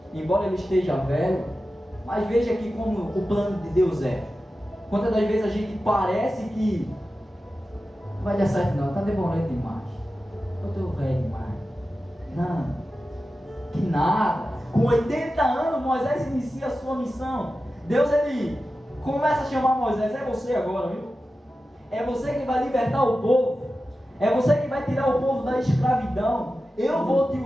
embora ele esteja velho. Mas veja aqui como o plano de Deus é. Quantas das vezes a gente parece que não vai dar certo não, está demorando demais. Eu estou velho demais. Não, que nada. Com 80 anos, Moisés inicia a sua missão. Deus, ele começa a chamar Moisés. É você agora, viu? É você que vai libertar o povo. É você que vai tirar o povo da escravidão. Eu vou te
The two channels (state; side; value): normal; both; correlation 0.93